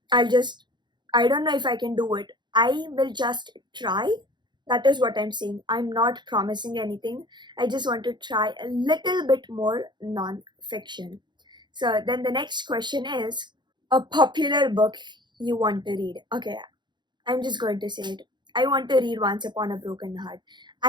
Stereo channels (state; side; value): late; left; 0.22 ms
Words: I'll just, I don't know if I can do it. I will just try. That is what I'm saying. I'm not promising anything. I just want to try a little bit more non-fiction. So then the next question is a popular book you want to read. Okay, I'm just going to say it. I want to read Once Upon a Broken Heart.